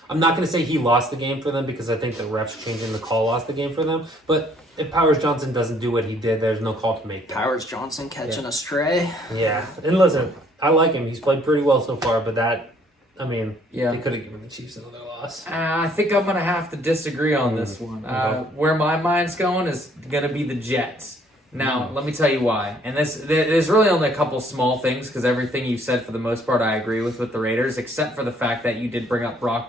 I'm not going to say he lost the game for them because I think the refs changing the call lost the game for them, but if Powers Johnson doesn't do what he did, there's no call to make. Powers Johnson catching a stray. Yeah, and listen, I like him. He's played pretty well so far, but they could have given the Chiefs another loss. I think I'm going to have to disagree on this one. Where my mind's going is going to be the Jets. Now, let me tell you why. And there's really only a couple small things, because everything you said for the most part I agree with the Raiders, except for the fact that you did bring up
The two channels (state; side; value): normal; both; correlation 0.62